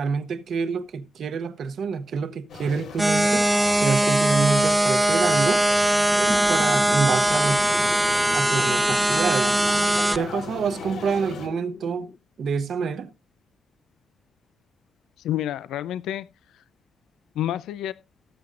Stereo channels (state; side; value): normal; both; correlation 0.93